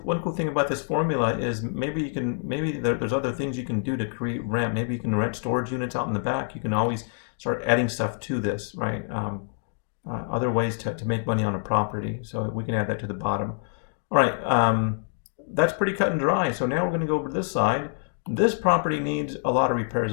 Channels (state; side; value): silent; right; digital silence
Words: thing about this formula is maybe there's other things you can do to create rent. Maybe you can rent storage units out in the back. You can always start adding stuff to this, right? Other ways to make money on a property. So we can add that to the bottom. All right, that's pretty cut and dry. So now we're going to go over to this side. This property needs a lot of repairs